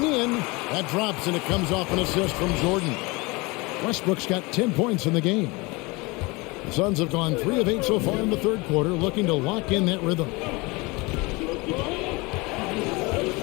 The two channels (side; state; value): right; quieter; 25.3 dB